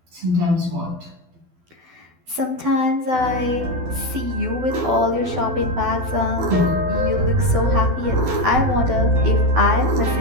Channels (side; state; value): left; late; 12 ms